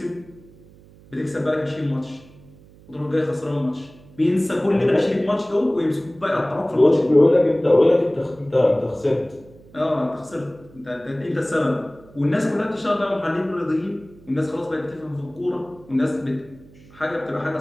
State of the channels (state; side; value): noise; right; hum, 24 dB below the sound